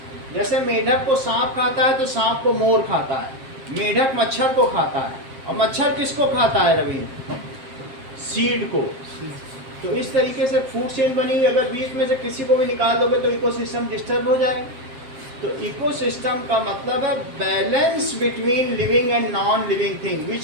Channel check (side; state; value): left; late; 7.5 ms